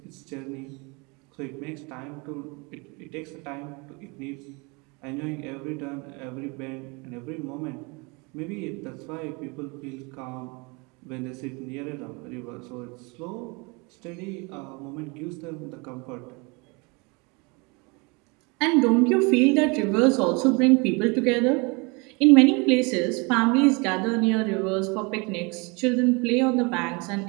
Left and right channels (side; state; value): left; quieter; 29.0 dB